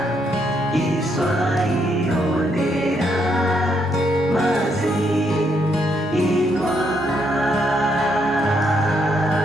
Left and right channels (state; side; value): normal; both; correlation 0.75